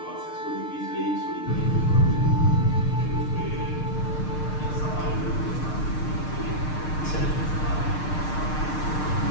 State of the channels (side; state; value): right; late; 6.6 ms